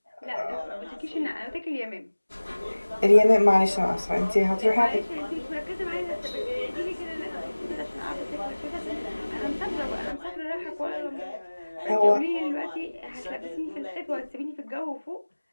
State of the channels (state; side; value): inverted; both; correlation -1.00